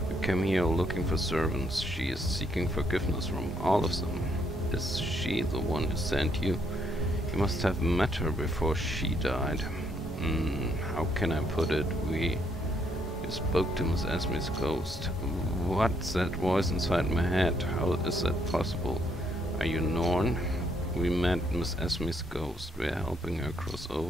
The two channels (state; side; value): normal; both; correlation 0.73